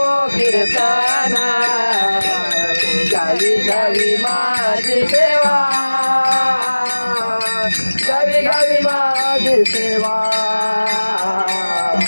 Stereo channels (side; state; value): both; inverted; correlation -1.00